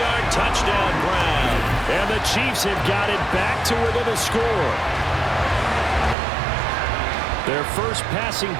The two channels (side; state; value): left; drops out; at 6.2 s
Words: touchdown grab. And the Chiefs have got it back to within a score. Their first passing